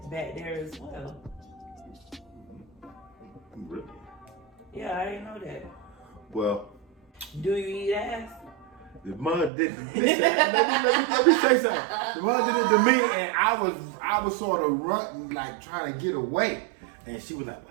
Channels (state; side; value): drops out; left; at 9.5 s